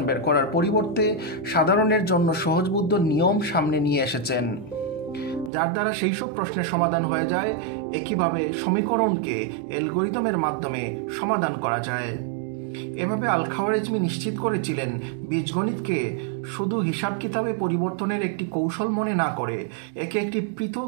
বের করার পরিবর্তে সাধারণের জন্য সহজবোধ্য নিয়ম সামনে নিয়ে এসেছেন, যার দ্বারা সেই সব প্রশ্নের সমাধান হয়ে যায় একইভাবে সমীকরণকে অ্যালগরিদমের মাধ্যমে সমাধান করা যায়। এভাবে আল খাওয়ারিজমি নিশ্চিত করেছিলেন বীজগণিতকে শুধু হিসাব কিতাবে পরিবর্তনের একটি কৌশল মনে না করে একে একটি পৃথক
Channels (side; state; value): left; drops out; at 5.5 s